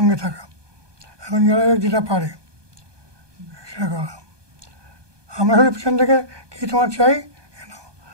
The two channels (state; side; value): late; left; 1.2 ms